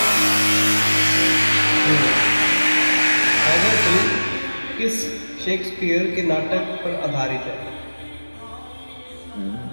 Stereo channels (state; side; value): inverted; both; correlation -1.00